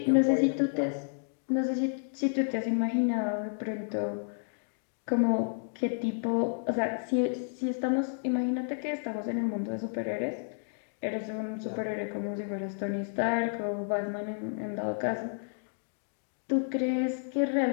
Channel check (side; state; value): right; silent; digital silence